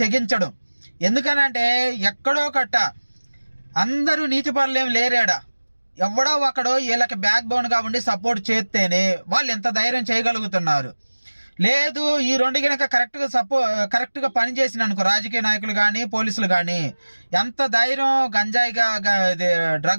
తెగించడు. ఎందుకనంటే ఎక్కడో కట్ట అందరూ నీతిపరులు ఏం లేరాడా, ఎవడో ఒకడో వీళ్ళకి బ్యాక్ బోన్గా ఉండి సపోర్ట్ చేస్తేనే వాళ్ళు ఎంత ధైర్యం చేయగలుగుతున్నారు. లేదు ఈ రెండు కనుక కరెక్ట్గా పనిచేసిన అనుకో రాజకీయ నాయకులు కానీ పోలీసులు కానీ ఎంత ధైర్యం గంజాయిగా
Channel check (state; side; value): inverted; both; correlation -1.00